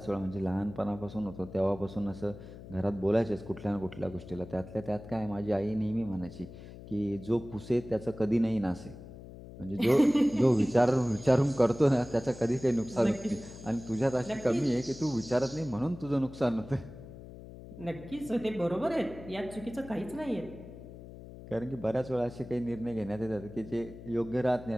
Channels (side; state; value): left; noise; hum, 15 dB below the sound